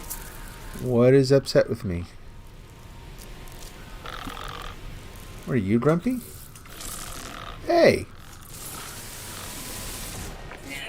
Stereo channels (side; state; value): both; identical; correlation 1.00